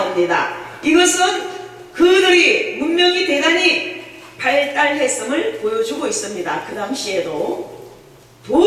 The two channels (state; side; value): identical; both; correlation 1.00